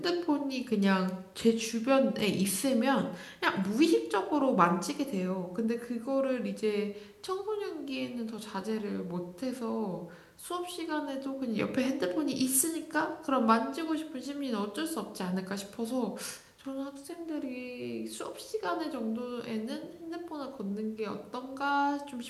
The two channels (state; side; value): identical; both; correlation 1.00